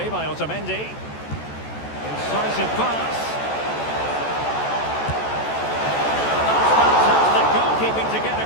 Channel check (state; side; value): late; right; 14 ms